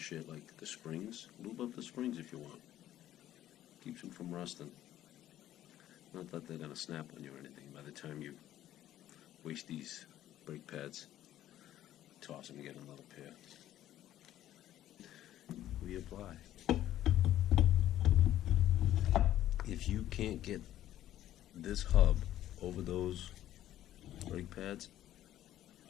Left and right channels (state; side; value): quieter; right; 12.8 dB